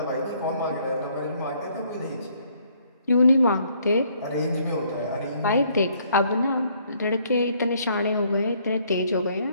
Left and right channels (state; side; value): inverted; both; correlation -0.66